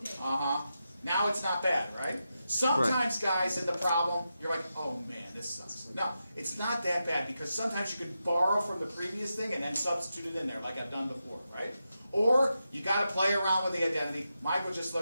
Now it's not bad, right? Sometimes, guys, in the problem, you're like, oh man, this sucks. No, it's not that bad, because sometimes you could borrow from the previous thing and then substitute it in there, like I've done before, right? Or you got to play around with the identity. Michael just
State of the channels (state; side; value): inverted; both; correlation -0.88